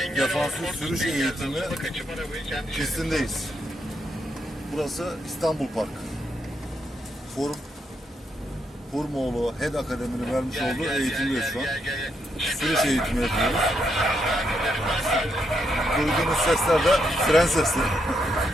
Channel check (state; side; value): normal; both; correlation 0.79